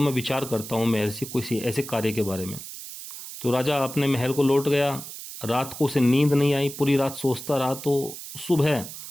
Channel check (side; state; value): right; noise; hiss, 11 dB below the sound